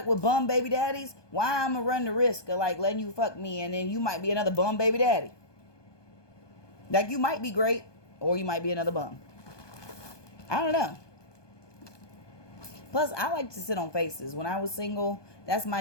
with bum baby daddies, why I'm gonna run the risk of, like, letting you fuck me and then you might be another bum baby daddy? Like, you might be great, or you might be another bum. I don't know. Plus, I like to sit on faces. When I was single, that's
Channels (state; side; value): late; right; 1.2 ms